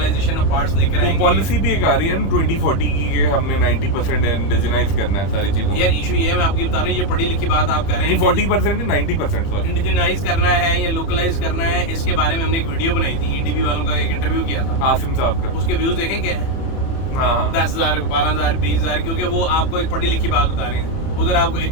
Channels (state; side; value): late; right; 30 ms